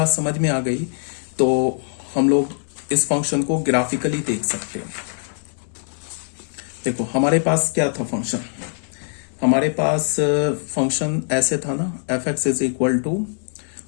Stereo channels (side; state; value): right; silent; digital silence